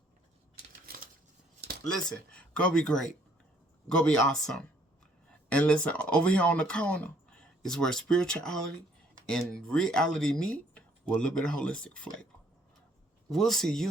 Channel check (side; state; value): both; normal; correlation 0.64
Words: Listen, go be great. Go be awesome. And listen, over here on the corner is where spirituality and reality meet with a little bit of holistic flavor. We'll see